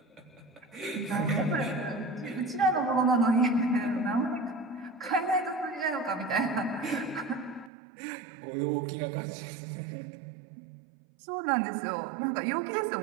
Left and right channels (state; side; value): drops out; left; at 7.7 s